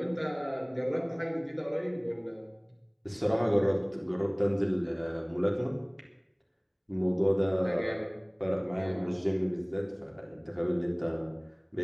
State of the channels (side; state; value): both; identical; correlation 1.00